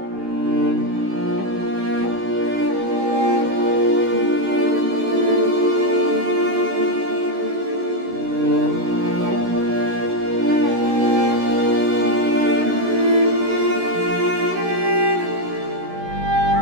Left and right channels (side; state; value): left; late; 16 ms